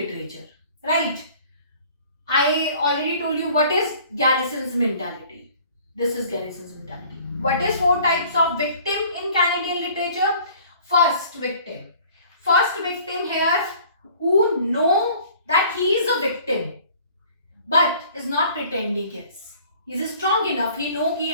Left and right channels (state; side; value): inverted; both; correlation -0.52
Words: right? I already told you what is Garrison's mentality. This is Garrison's mentality. What is 4 types of victim in Canadian literature? First victim here who know that he is a victim but is not pretending yes. He is strong enough. He know कि